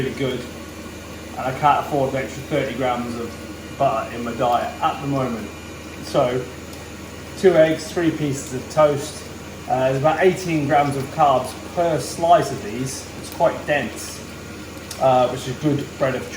good. And I can't afford an extra 30 grams of butter in my diet at the moment. So 2 eggs, 3 pieces of toast, There's about 18 grams of carbs per slice of these. It's quite dense, which is good bread of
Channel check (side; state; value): both; identical; correlation 1.00